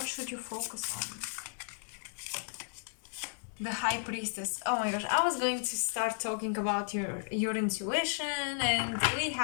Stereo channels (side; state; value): right; silent; digital silence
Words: should you focus on? The High Priestess. Oh my gosh, I was going to start talking about your intuition, and we